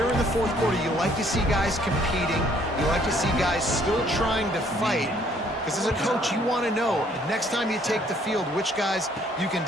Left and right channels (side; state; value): both; normal; correlation 0.63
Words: in the fourth quarter, you like to see guys competing. You like to see guys still trying to fight. Because as a coach, you want to know, next time you take the field, which guys you can